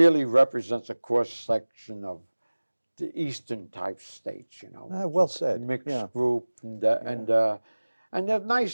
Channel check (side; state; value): both; inverted; correlation -1.00